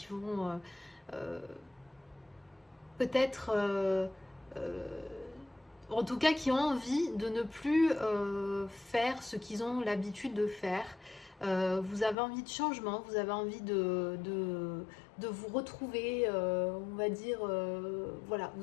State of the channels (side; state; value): right; drops out; at 12.2 s